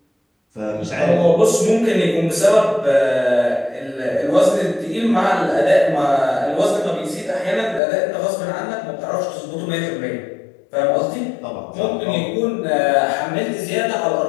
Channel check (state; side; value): drops out; right; at 7.8 s